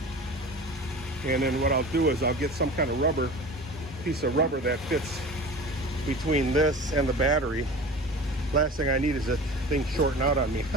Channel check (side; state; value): both; normal; correlation 0.36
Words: And then what I'll do is I'll get some kind of rubber, piece of rubber that fits between this and the battery. Last thing I need is that thing shorting out on me.